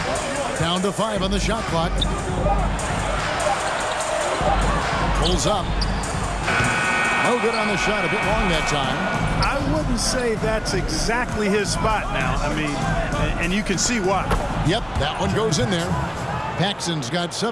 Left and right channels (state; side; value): identical; both; correlation 1.00